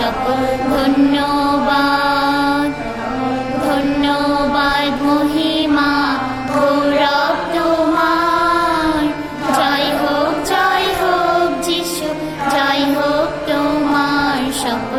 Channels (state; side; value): identical; both; correlation 1.00